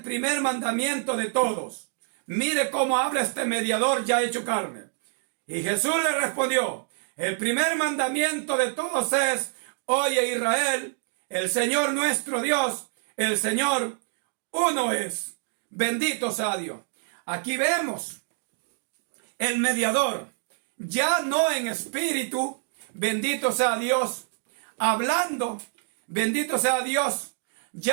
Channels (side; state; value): left; silent; 60 dB below the other